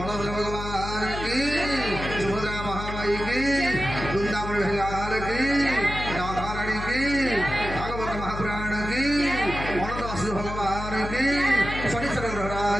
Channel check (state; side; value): noise; left; hum, 7 dB below the sound